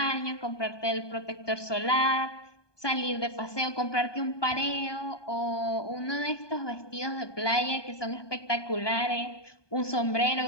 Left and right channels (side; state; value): right; late; 1.2 ms